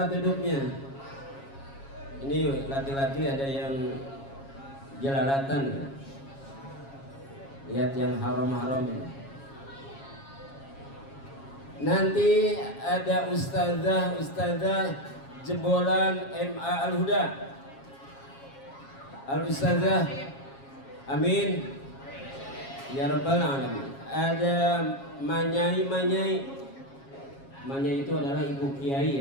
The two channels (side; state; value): right; late; 7.3 ms